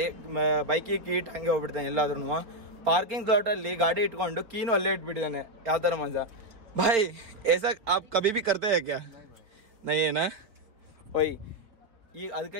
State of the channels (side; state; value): left; late; 4.5 ms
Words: ಬೈಕಿಗೆ ಕೀ ಇಟ್ಟು ಹಂಗೆ ಹೋಗ್ಬಿಡ್ತಾನೆ ಎಲ್ಲಾದ್ರೂ. ಪಾರ್ಕಿಂಗ್ ಸ್ಲಾಟಲ್ಲಿ ಗಾಡಿ ಇಟ್ಕೊಂಡು ಕೀನು ಅಲ್ಲೇ ಇಟ್ಬಿಟ್ಟಿದ್ದಾನೆ. ಯಾವ ಥರ ಮಜಾ ಭಾಯ್? ऐसा आप कभी भी करते हैं क्या? नहीं है ना? ಓಯ್, ಈಗ